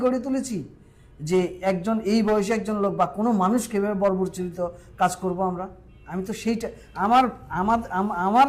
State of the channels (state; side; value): identical; both; correlation 1.00